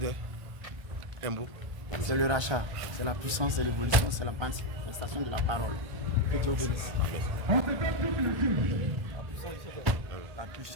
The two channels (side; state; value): left; late; 1.2 ms